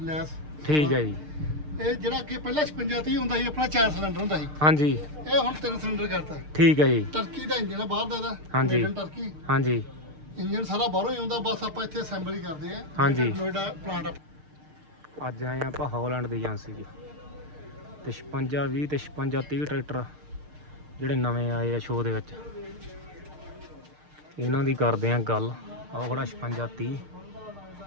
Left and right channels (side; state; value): left; late; 6.6 ms